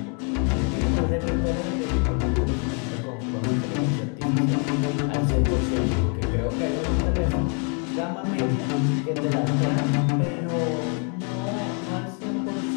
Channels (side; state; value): right; quieter; 39.1 dB